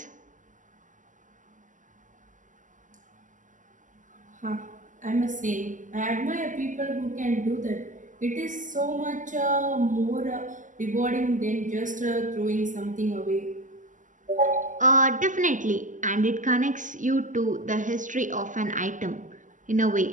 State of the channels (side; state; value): left; late; 0.37 ms